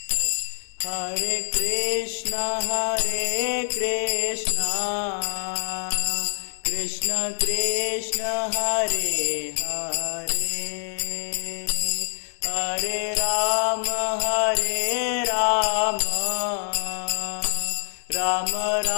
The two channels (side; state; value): right; silent; digital silence